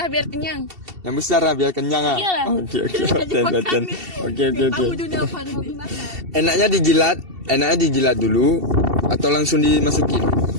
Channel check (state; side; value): late; left; 2.7 ms